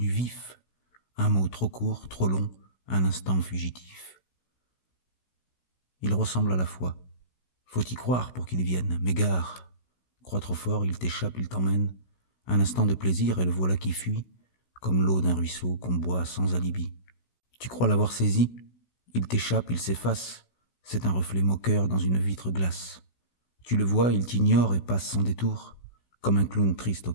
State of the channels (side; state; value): right; late; 16 ms